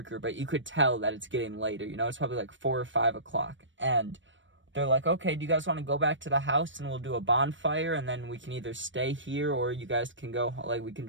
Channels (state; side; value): late; left; 0.55 ms